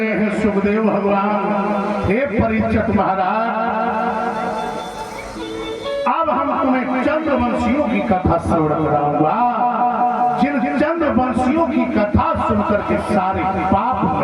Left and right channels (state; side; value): identical; both; correlation 1.00